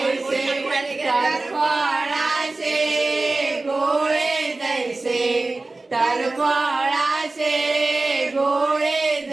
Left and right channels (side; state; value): left; quieter; 3.2 dB